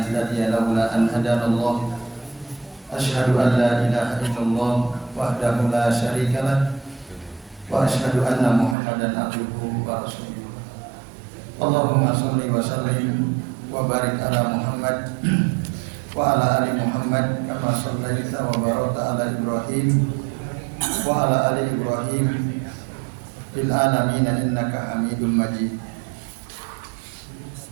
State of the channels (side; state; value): left; drops out; at 8.8 s